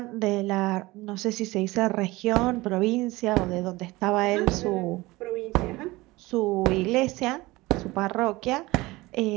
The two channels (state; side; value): quieter; left; 20.6 dB